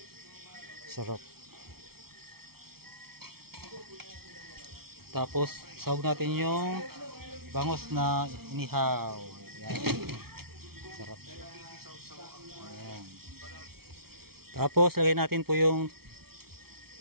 Sarap. Tapos, sahog natin yung bangos na inihaw. Yan. Sarap. Ayan. Tapos, lagay natin po yung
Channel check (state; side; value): late; left; 0.94 ms